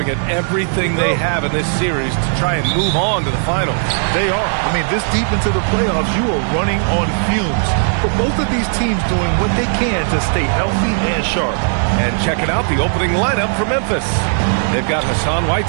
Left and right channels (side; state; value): left; silent; 69 dB below the other